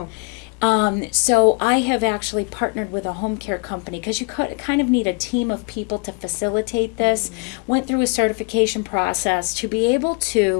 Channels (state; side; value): quieter; right; 34.4 dB